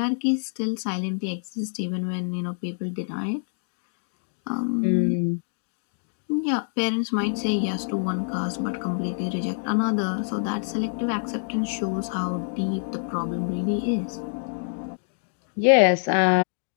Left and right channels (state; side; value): silent; right; digital silence